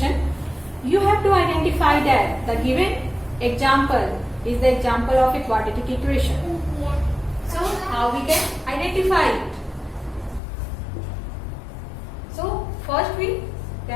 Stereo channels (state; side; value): drops out; right; at 10.4 s